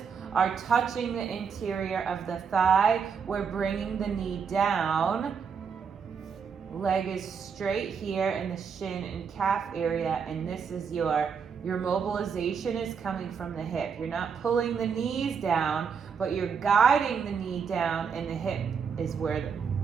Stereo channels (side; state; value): left; quieter; 6.4 dB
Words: are touching the interior of the thigh. We're bringing the knee down. Leg is straight here in the shin and calf area, and this is your mobilization is coming from the hip. You're not pulling the knees down, but you're guiding the knee down, and the hip is where